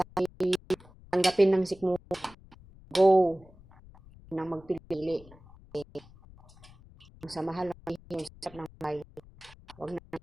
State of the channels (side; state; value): left; noise; rumble, 23 dB below the sound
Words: tanggapin ng sikmo. Go. Nang magpili. Sa mahal ng hirap ng may. Huwag na